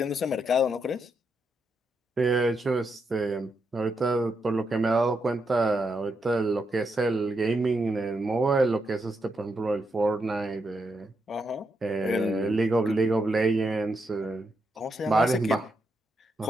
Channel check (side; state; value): both; normal; correlation 0.82